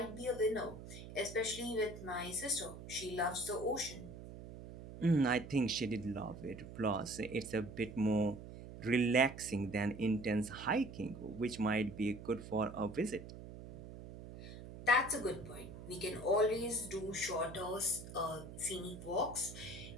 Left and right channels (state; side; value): noise; right; hum, 13 dB below the sound